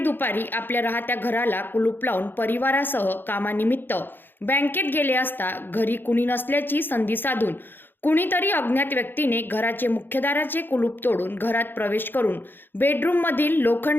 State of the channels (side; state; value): right; late; 0.098 ms